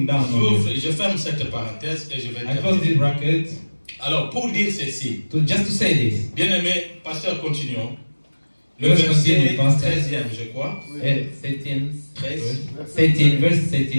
down on you? Je ferme cette parenthèse et je vais I close this bracket. Alors, pour dire ceci, Just to say this. bien aimé, pasteur, continuons. Le Let's verset continue, pastor. 13e, je crois. 13, verse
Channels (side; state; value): both; inverted; correlation -1.00